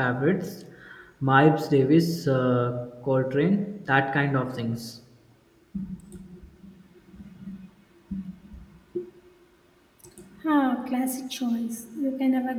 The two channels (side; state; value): both; identical; correlation 1.00